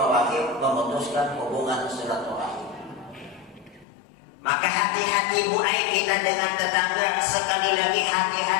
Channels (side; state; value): right; drops out; at 3.9 s